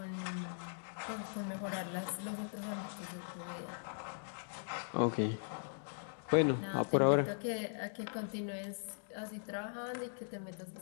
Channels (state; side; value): silent; right; digital silence